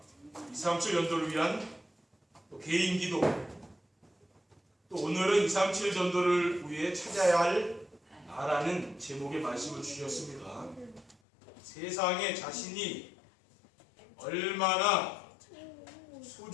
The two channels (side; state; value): right; drops out; at 11.2 s